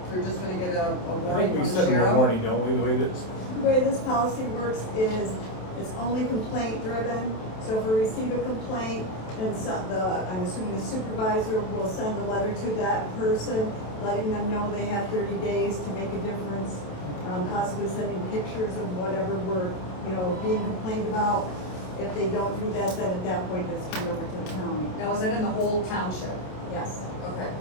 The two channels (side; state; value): right; late; 27 ms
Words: they're just gonna get a I warning think we from the sent them a sheriff? warning, don't we, the way this? The way this policy works is it's only complaint driven. So if we receive a complaint, then I'm assuming the supervisor will send a letter to that person, letting them know they have 30 days to make a difference, possibly sending pictures of whatever we're, being complained about. If they don't do that, then at that point it's turned over to the county. Now, is that in the whole township? Yes. Okay.